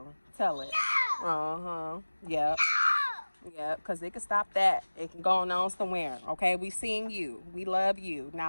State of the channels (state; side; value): inverted; both; correlation -1.00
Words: Tell it. Uh-huh. Yep. Yep. Because it can stop that. It can go on somewhere. Okay? We seeing you. We love you.